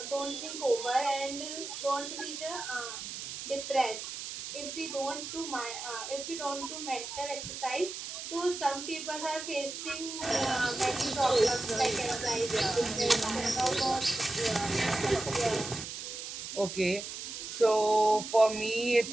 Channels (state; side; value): noise; right; hiss, 8 dB below the sound